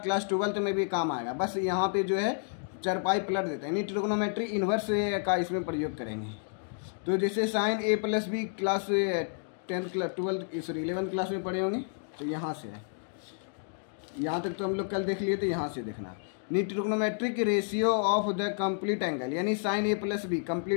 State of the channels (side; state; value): right; silent; digital silence